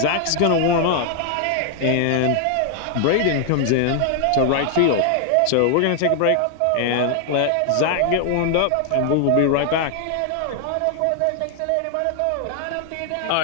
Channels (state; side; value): different; both; correlation 0.00